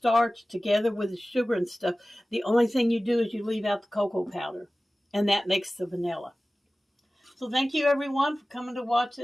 together with the sugar and stuff. The only thing you do is you leave out the cocoa powder. And that makes the vanilla. So thank you everyone for coming to watch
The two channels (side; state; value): both; normal; correlation 0.97